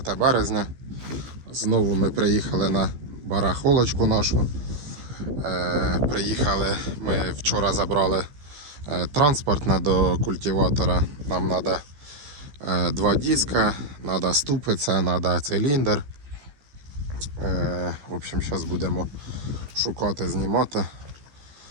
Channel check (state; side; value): late; left; 14 ms